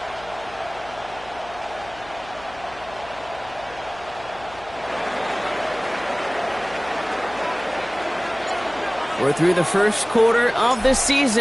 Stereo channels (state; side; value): noise; left; hum, 19 dB below the sound